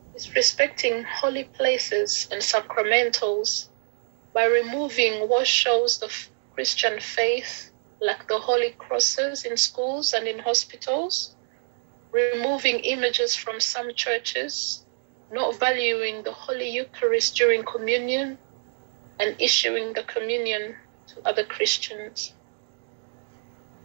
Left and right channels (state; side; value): silent; left; digital silence